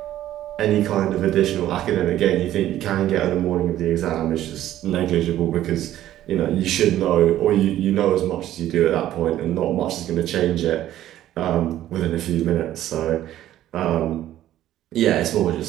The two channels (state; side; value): quieter; left; 13.0 dB